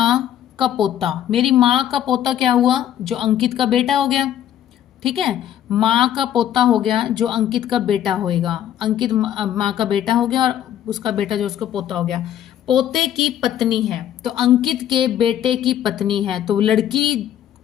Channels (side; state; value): right; quieter; 10.9 dB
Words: का पोता, मेरी माँ का पोता क्या हुआ? जो अंकित का बेटा हो गया, ठीक है, माँ का पोता हो गया जो अंकित का बेटा होएगा। अंकित माँ का बेटा हो गया और उसका बेटा जो उसका पोता हो गया। पोते की पत्नी है, तो अंकित के बेटे की पत्नी है, तो लड़की